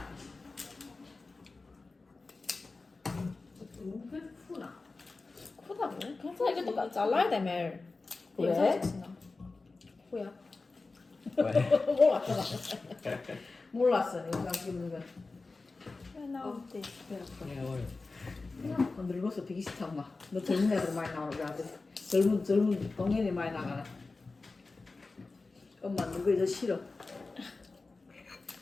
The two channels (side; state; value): right; quieter; 3.7 dB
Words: 너무 크나? 크다고? 괜찮아 이것도 잘라야 돼 매일. 왜? 뭐야? 몰랐어. 몰랐어. 이거 찍는 거. 왜 나오지? Yeah, what? 늙어서 되게 싫다 엄마. 너 젊은 애들 많이 나오는 거 같아. 젊은 동년이 많이 나가네. 엄마 늙어서 싫어.